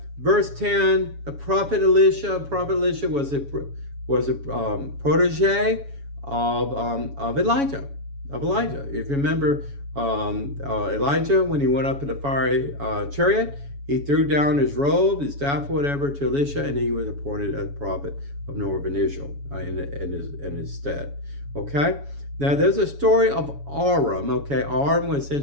verse 10, the prophet Elisha was a protege of Elijah. If you remember, Elijah, when he went up in the fiery chariot, he threw down his robe, his staff, whatever, to Elisha, and he was appointed as prophet of Northern Israel in his stead. Okay? Now, there's a story of Aram. Okay? Aram was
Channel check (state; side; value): late; left; 7.1 ms